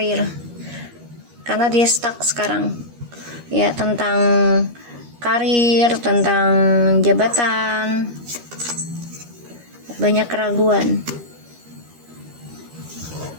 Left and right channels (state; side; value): late; left; 13 ms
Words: Karena dia stuck sekarang ya, tentang karir, tentang jabatan, banyak keraguan.